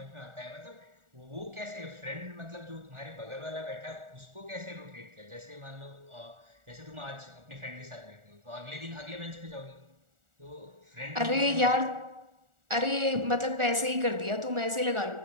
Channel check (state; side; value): late; left; 1.4 ms